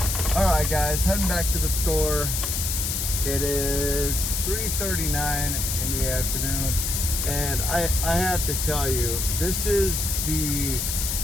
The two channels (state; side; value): noise; left; hiss, 1 dB below the sound